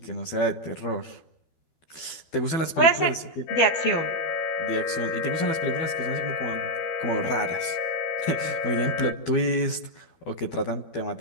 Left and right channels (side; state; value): right; late; 12 ms